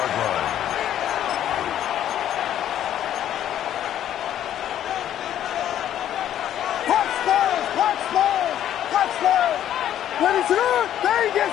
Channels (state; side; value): quieter; right; 11.1 dB